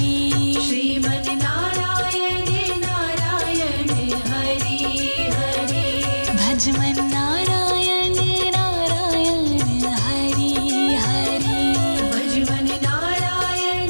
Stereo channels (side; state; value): both; inverted; correlation -1.00